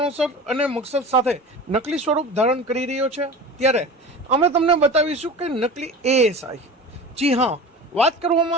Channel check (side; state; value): both; normal; correlation 0.34